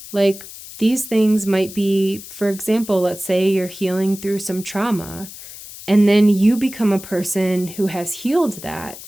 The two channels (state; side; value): noise; left; hiss, 15 dB below the sound